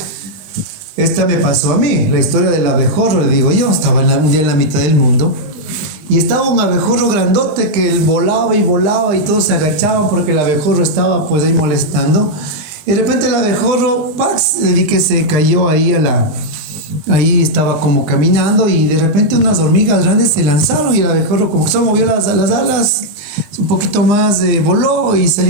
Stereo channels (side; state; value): left; late; 20 ms